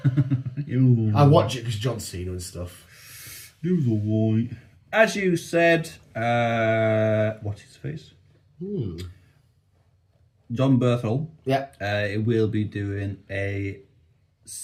I watch it because John Cena and stuff. It was alright. As you said, what's his face? John Berthel. Yeah. It will be doing a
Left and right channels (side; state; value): both; identical; correlation 1.00